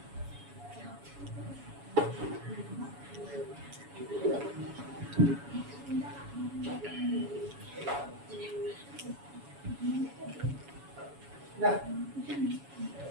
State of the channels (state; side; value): late; left; 7.1 ms